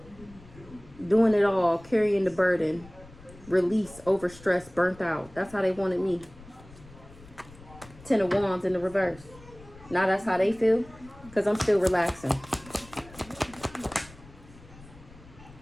Doing it all, carrying the burden. Release, overstressed, burnt out. That's how they wanted me. 10 of Wands in the reverse. Now that's how they feel because I'm still relaxing.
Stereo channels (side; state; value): left; noise; rumble, 21 dB below the sound